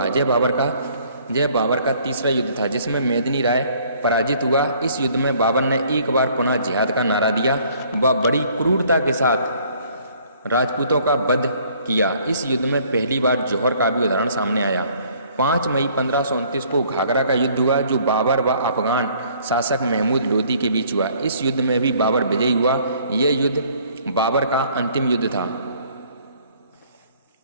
यह बाबर का तीसरा युद्ध था, जिसमें मेदिनी राय पराजित हुआ। इस युद्ध में बाबर ने एक बार पुनः जिहाद का नारा दिया व बड़ी क्रूरता के साथ राजपूतों का वध किया। इस युद्ध में पहली बार जौहर का भी उदाहरण सामने आया। 5 मई 1529 को घाघरा का युद्ध हुआ, जो बाबर व अफगान शासक महमूद लोधी के बीच हुआ। इस युद्ध में भी बाबर विजयी हुआ। यह युद्ध बाबर का अंतिम युद्ध था।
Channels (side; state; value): both; inverted; correlation -0.60